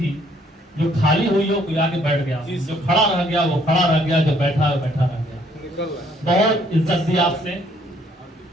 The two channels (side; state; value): both; normal; correlation 0.65